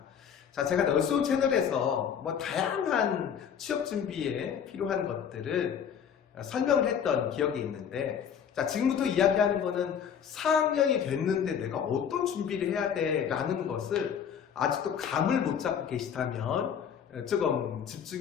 자, 제가 널스온 채널에서 다양한 취업 준비에 필요한 것들을 설명을 했던 기억이 있는데, 자, 지금부터 이야기하는 거는 4학년이 됐는데 내가 어떤 준비를 해야 돼 라는 것을 아직도 감을 못 잡고 계시다면 조금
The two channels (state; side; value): quieter; right; 8.0 dB